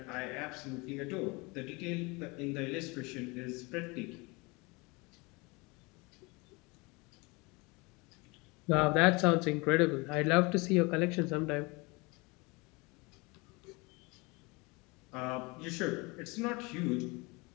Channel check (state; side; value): quieter; right; 26.5 dB